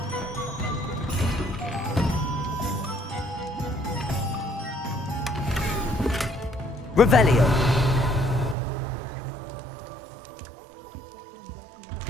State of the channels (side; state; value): left; drops out; at 8.6 s